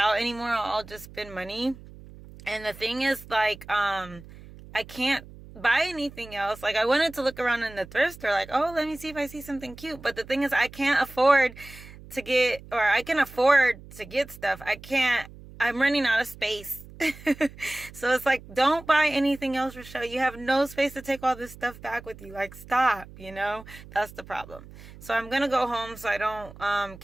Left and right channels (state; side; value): noise; right; hum, 18 dB below the sound